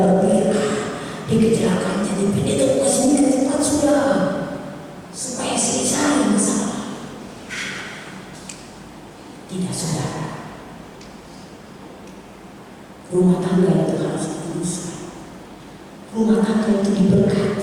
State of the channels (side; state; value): both; identical; correlation 1.00